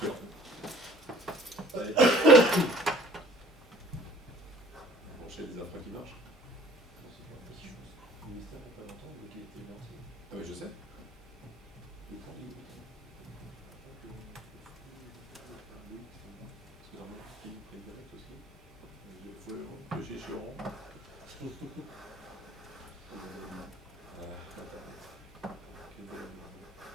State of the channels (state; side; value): normal; both; correlation 0.52